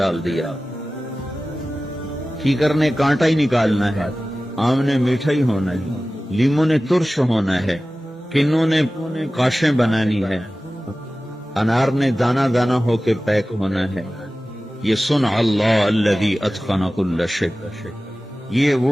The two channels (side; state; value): both; normal; correlation 0.96